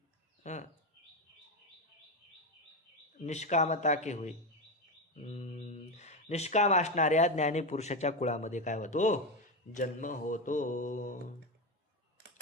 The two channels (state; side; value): normal; both; correlation 0.14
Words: निष्कामता के हुए, निष्काम असणाऱ्या ज्ञानी पुरुषाच्या कुळामध्ये काय होतो, जन्म होतो.